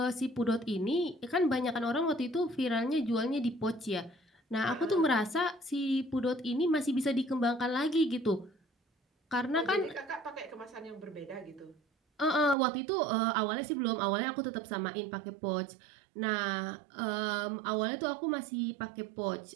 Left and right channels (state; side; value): drops out; left; at 12.6 s